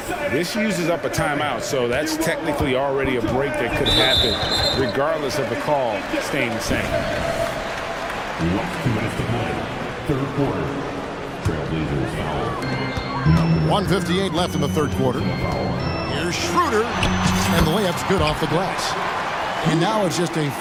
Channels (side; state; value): both; identical; correlation 1.00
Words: this uses up a timeout, so that's technically already a break that could happen, regardless of the call staying the same. 2 minutes to play. Third quarter. Trailblazers foul. 1:58 left in the third quarter. Here's Schroeder, and the layup's good off the glass. And now it's just a